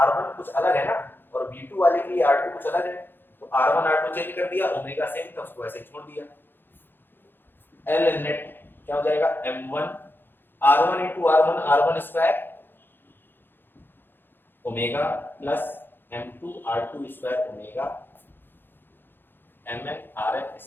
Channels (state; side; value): late; right; 0.099 ms